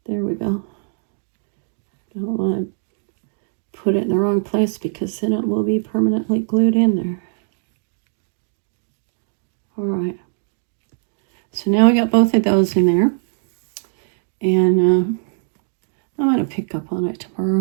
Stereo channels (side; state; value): left; silent; digital silence